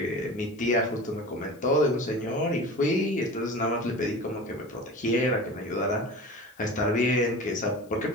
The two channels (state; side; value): noise; left; hiss, 29 dB below the sound